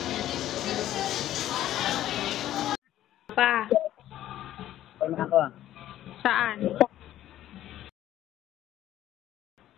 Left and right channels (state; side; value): quieter; right; 12.9 dB